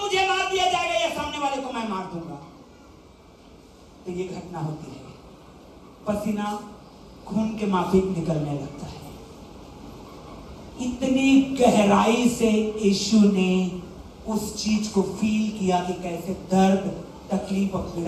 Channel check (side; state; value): both; identical; correlation 1.00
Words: मुझे मार दिया जाएगा या सामने वाले को मैं मार दूंगा। तो ये घटना होती है, पसीना खून के माफिक निकलने लगता है। इतनी गहराई से यीशु ने उस चीज को फील किया कि कैसे दर्द, तकलीफ और